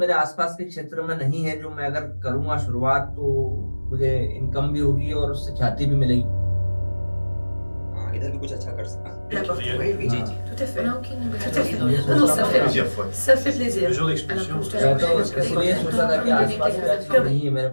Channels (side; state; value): both; inverted; correlation -1.00